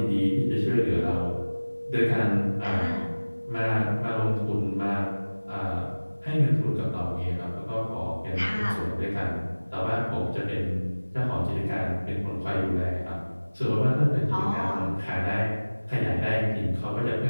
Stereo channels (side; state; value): both; inverted; correlation -1.00